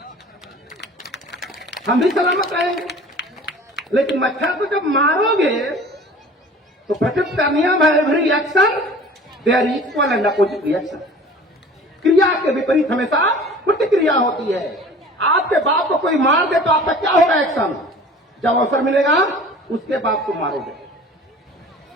हम भी सलामत रहेंगे। लेकिन मच्छर को जब मारोगे तो प्रकृति का नियम है, every action there equal and opposite reaction. क्रिया के विपरीत हमेशा प्रतिक्रिया होती है। आपके बाप को कोई मार दे तो आपका क्या होगा एक्शन? जब अवसर मिलेगा उसके बाप को मारोगे,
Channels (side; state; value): both; normal; correlation 0.44